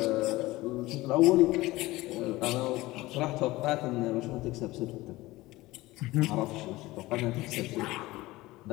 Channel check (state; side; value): quieter; right; 19.1 dB